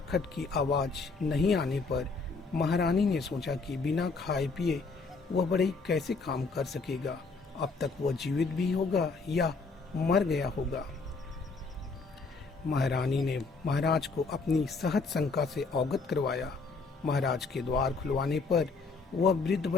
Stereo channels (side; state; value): right; quieter; 4.3 dB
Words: की आवाज नहीं आने पर महारानी ने सोचा कि बिना खाए पिए वह बढ़ई कैसे काम कर सकेगा। अब तक वह जीवित भी होगा या मर गया होगा। महारानी ने महाराज को अपनी सहज शंका से अवगत करवाया। महाराज के द्वार खुलवाने पर वह वृद्ध